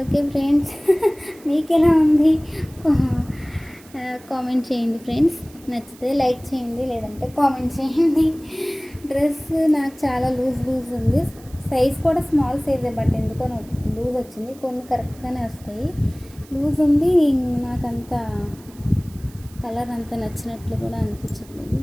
ఓకే ఫ్రెండ్స్, మీకు ఎలా ఉంది కామెంట్ చేయండి ఫ్రెండ్స్. నచ్చితే లైక్ చేయండి, లేదంటే కామెంట్ చేయండి. డ్రెస్ నాకు చాలా లూజ్ ఉంది. సైజ్ కూడా స్మాల్ సైజే, బట్ ఎందుకో లూజ్ వచ్చింది. కొన్ని కరెక్ట్గానే వస్తాయి. లూజ్ ఉంది. నాకంత కలర్ అంత నచ్చినట్లు కూడా అనిపించట్లేదు.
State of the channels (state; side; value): noise; right; hiss, 24 dB below the sound